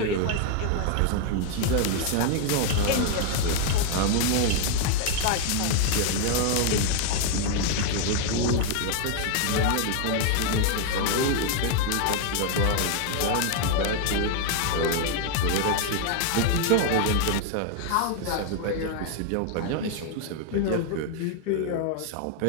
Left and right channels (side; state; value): both; different; correlation 0.00